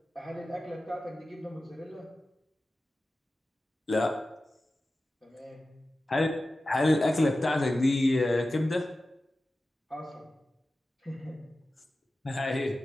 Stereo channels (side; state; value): both; normal; correlation 0.94